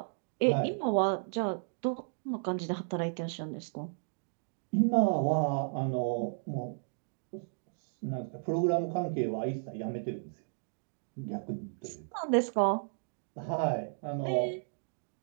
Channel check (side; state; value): left; silent; digital silence